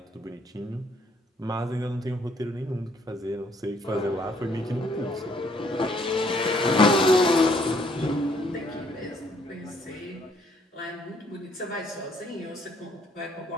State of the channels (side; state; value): both; normal; correlation 0.66